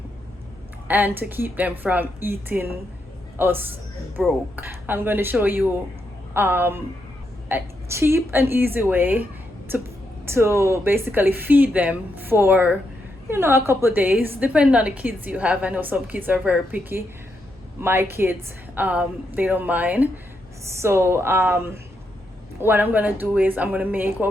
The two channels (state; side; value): normal; both; correlation 0.81